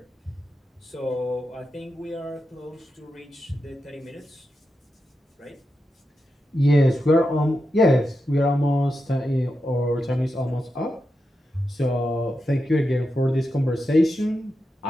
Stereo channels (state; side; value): normal; both; correlation 0.88